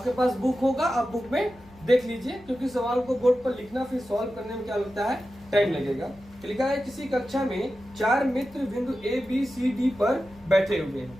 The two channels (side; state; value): left; noise; hum, 25 dB below the sound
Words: पास बुक होगा, आप बुक में देख लीजिए, क्योंकि सवाल को बोर्ड पर लिखना फिर सॉल्व करने में क्या लगता है, टाइम लगेगा। लिखा है किसी कक्षा में 4 मित्र बिंदु ए बी सी डी पर बैठे हुए